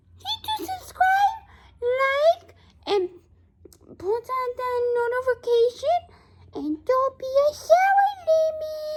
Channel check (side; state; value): both; identical; correlation 1.00